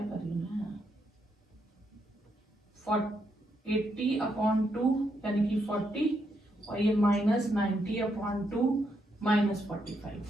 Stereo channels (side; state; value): both; normal; correlation 0.79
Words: कर रही हूं मैं, 80 अपॉन 2 यानी कि 40 और ये माइनस 90 अपॉन 2 माइनस 45।